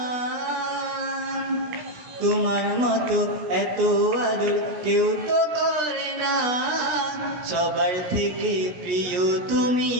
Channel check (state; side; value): late; left; 17 ms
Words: তোমার মতো এত আদর কেউ তো করে না। সবার থেকে প্রিয় তুমি,